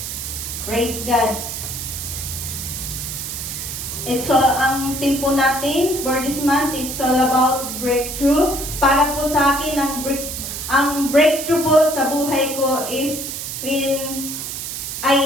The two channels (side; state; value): right; noise; hiss, 6 dB below the sound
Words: Praise God. Ang theme po natin for this month, it's all about breakthrough. Para po sa akin, ang breakthrough po sa buhay ko is when